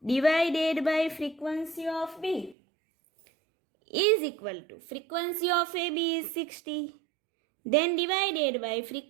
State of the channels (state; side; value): drops out; left; at 2.6 s